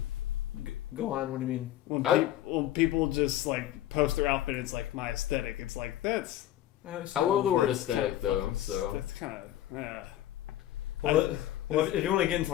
Go on. What do you mean? When people just post their outfit, it's my aesthetic. It's that's. I love the word aesthetic though. So That's kind of. Well, if you want to get into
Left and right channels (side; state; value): right; quieter; 13.3 dB